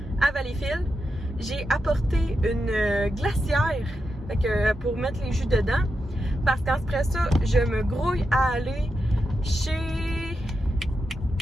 à Valleyfield. J'ai apporté une glacière, fait que, pour mettre les jus dedans, parce qu'après ça, je me grouille à aller chez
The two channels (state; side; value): normal; both; correlation 0.87